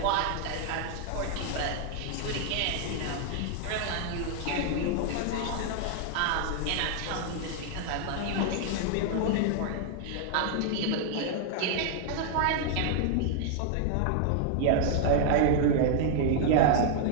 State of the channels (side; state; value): both; different; correlation 0.00